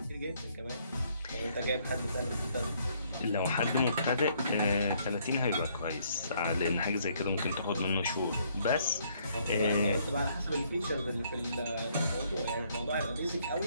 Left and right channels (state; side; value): inverted; both; correlation -0.67